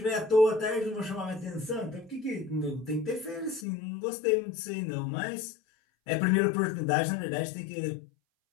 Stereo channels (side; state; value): right; drops out; at 3.7 s